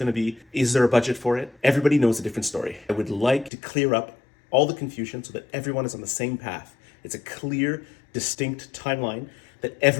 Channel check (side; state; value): right; drops out; at 3.5 s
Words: to be, is there a budget for it? Everybody knows a different story. I would like to clear up all the confusion so that everyone is on the same path. It's a clear, distinct timeline that